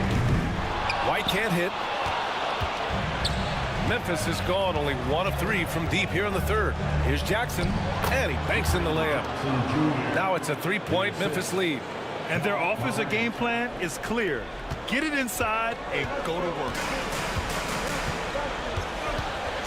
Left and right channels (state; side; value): identical; both; correlation 1.00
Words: White can't hit. Memphis has gone only 1 of 3 from deep here in the 3rd. Here's Jackson. And he banks in the layup. Now it's a 3-point Memphis lead. And their offensive game plan is clear. Get it inside and go to work.